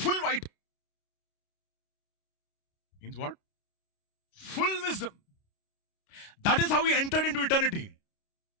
white. Means what? Full wisdom. That is how he entered into eternity.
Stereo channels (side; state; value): right; late; 29 ms